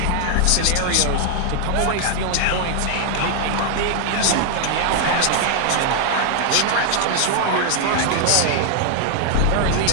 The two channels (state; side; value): different; both; correlation 0.00